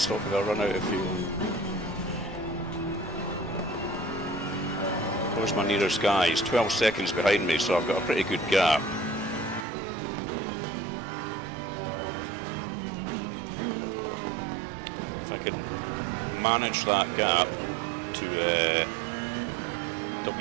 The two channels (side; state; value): left; drops out; at 9.7 s